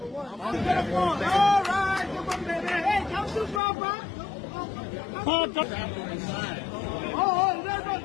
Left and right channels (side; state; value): right; drops out; at 3.6 s